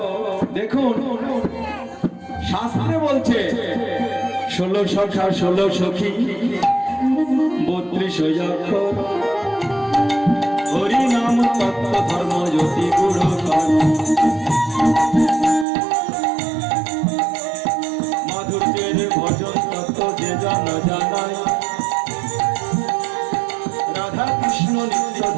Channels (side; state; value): left; drops out; at 15.7 s